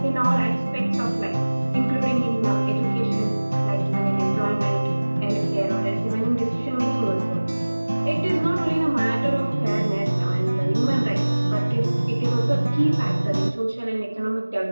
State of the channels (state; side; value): inverted; both; correlation -1.00